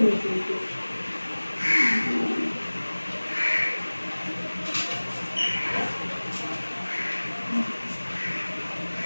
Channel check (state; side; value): inverted; both; correlation -1.00